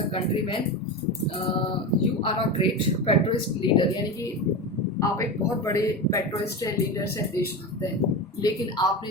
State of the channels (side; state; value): both; normal; correlation 0.22